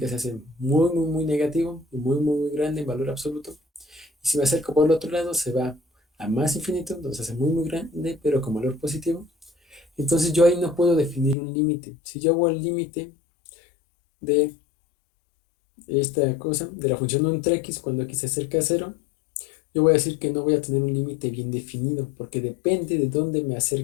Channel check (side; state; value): right; drops out; at 11.4 s